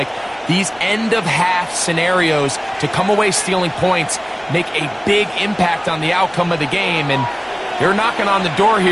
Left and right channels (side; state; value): both; identical; correlation 1.00